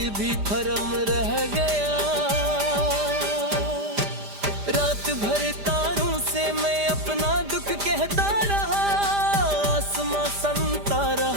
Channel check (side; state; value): left; late; 5.0 ms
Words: भी भरम रह गया। रात भर तारों से मैं अपना दुख कहता रहा, आसमां संता